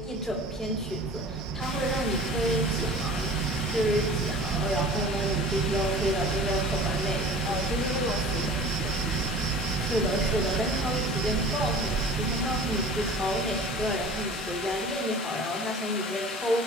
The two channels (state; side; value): normal; both; correlation 0.42